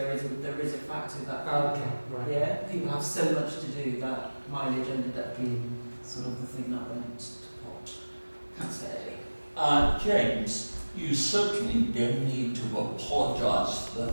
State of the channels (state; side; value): inverted; both; correlation -1.00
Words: is a factor that people have so much to do that mileage ended up being sort of the thing that went to pot. Can't say. James, you certainly don't need to apologise for the